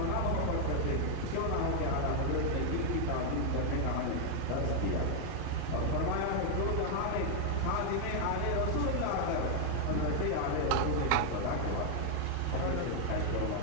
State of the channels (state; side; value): different; both; correlation 0.00